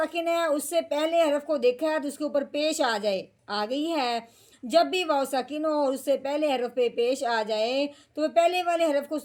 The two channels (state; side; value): identical; both; correlation 1.00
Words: ہے، اس سے پہلے حرف کو دیکھا ہے تو اس کے اوپر پیش آ جائے، آ گئی ہے۔ جب بھی واؤ ساکن ہو اور اس سے پہلے حرف پہ پیش آ جائے تو وہ پہلے والے حرف کو